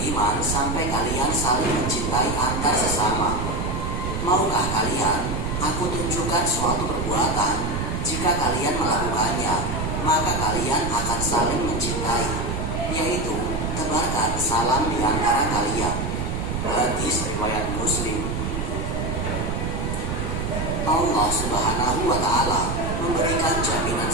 sampai kalian saling mencintai antar sesama. Maukah kalian aku tunjukkan suatu perbuatan? Jika kalian melakukannya, maka kalian akan saling mencintai, yaitu tebarkan salam di antara kalian. Hadis riwayat Muslim. Allah Subhanahu wa Ta'ala memberikan jaminan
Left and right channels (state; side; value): noise; right; rumble, 2 dB below the sound